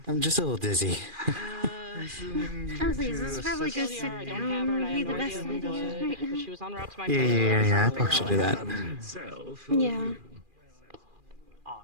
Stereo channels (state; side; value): late; left; 2.4 ms